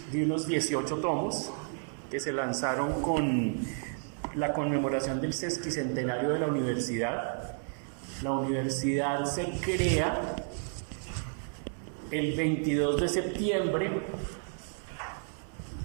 de unos 18 tomos que se lanzaron con la conmemoración del sesquicentenario de la universidad. La universidad se crea el 22 de septiembre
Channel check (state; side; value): silent; left; 57 dB below the other